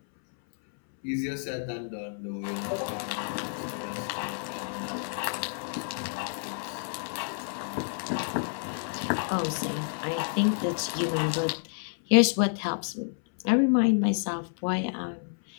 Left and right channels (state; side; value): silent; right; 58 dB below the other